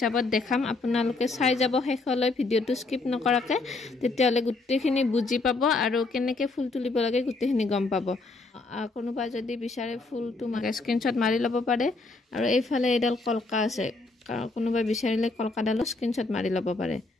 দেখাম আপোনালোকে চাই যাব শেষলৈ ভিডিওটো স্কিপ নকৰাকে তেতিয়ালে গুটেখিনি বুজি পাব আৰু কেনেকে ফুল তুলিব লাগে গুটেখিনি গম পাব কোনোবা যদি বিচাৰে ফুলটো মাকে স্ক্ৰিনশ্বট মাৰি ল'ব পাৰে আৰু এইফালে এডাল কলকা আছে কোনোবা বিচাৰিলে কলকাডালো স্ক্ৰিনশ্বট মাৰি ল'ব পাৰে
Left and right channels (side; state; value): right; quieter; 3.5 dB